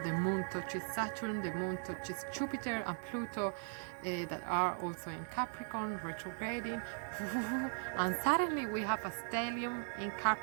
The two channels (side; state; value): left; silent; 52 dB below the other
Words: moon touches Saturn, the moon touches Jupiter and Pluto, that are also in Capricorn, retrograding. And suddenly we have a stellium in